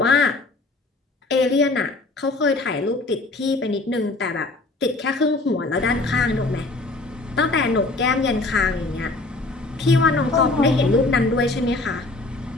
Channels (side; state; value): right; quieter; 3.2 dB